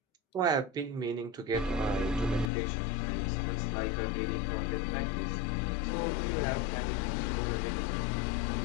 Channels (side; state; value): right; drops out; at 2.5 s